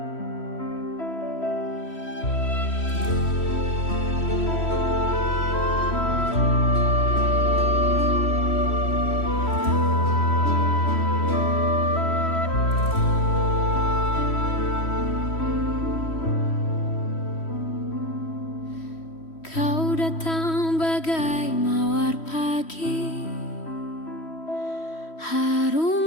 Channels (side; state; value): right; late; 3.1 ms